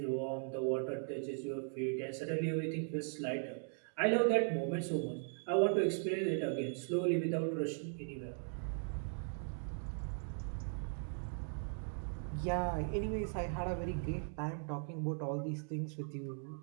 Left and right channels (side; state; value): left; silent; 52 dB below the other